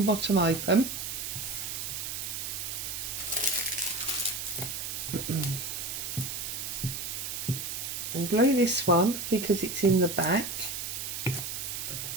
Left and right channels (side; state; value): right; noise; hiss, 4 dB below the sound